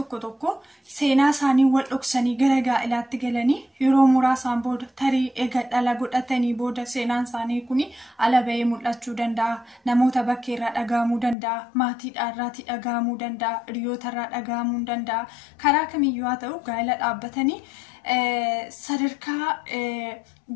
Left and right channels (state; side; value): drops out; right; at 11.4 s